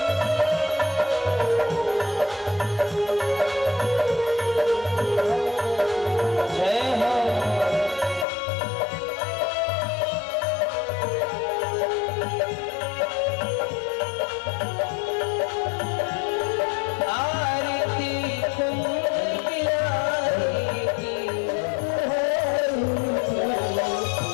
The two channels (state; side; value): drops out; right; at 8.2 s